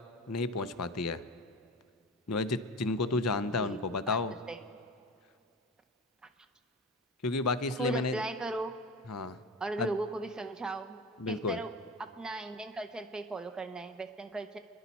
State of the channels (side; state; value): both; normal; correlation 0.31